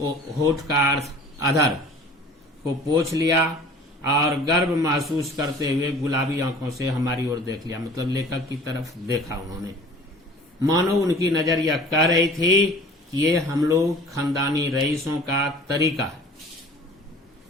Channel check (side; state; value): both; normal; correlation 0.46